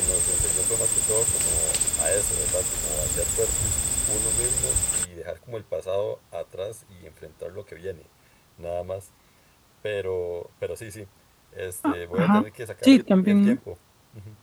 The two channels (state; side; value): identical; both; correlation 1.00